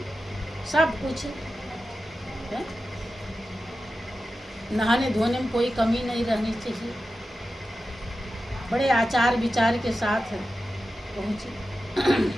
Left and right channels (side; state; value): both; normal; correlation 0.92